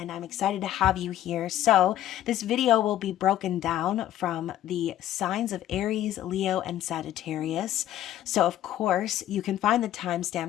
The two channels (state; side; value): quieter; right; 12.6 dB